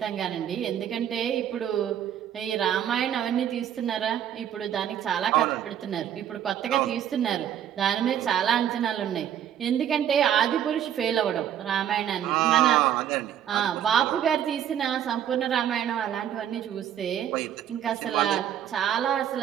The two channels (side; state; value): left; quieter; 10.1 dB